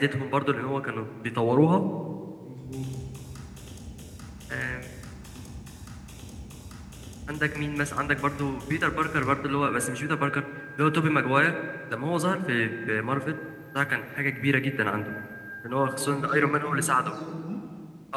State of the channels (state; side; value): identical; both; correlation 1.00